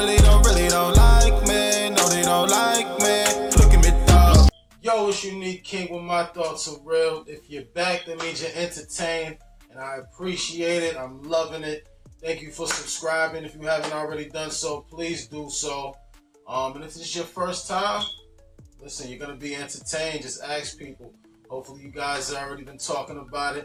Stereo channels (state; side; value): identical; both; correlation 1.00